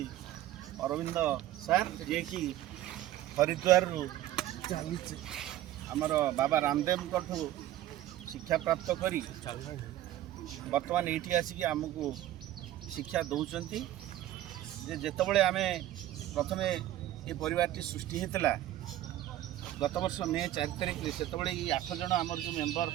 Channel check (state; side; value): quieter; left; 13.7 dB